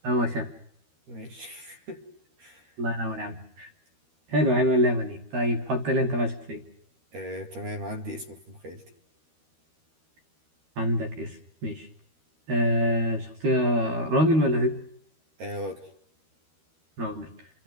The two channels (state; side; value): late; left; 13 ms